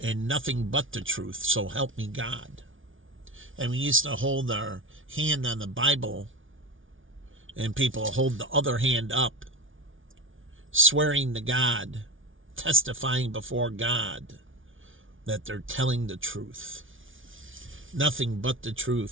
and nothing but the truth, so help me God. And we used to hold our hand on the Bible, and people hold the other hand up, swearing to God, testifying before God that they're telling the truth. Nothing but the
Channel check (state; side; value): late; left; 0.57 ms